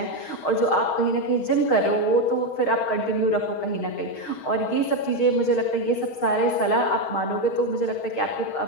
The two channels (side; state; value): right; late; 6.3 ms